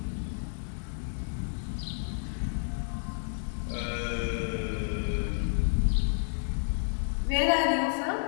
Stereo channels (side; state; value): right; silent; digital silence